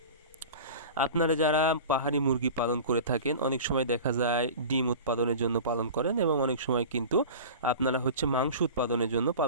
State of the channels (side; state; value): both; inverted; correlation -0.35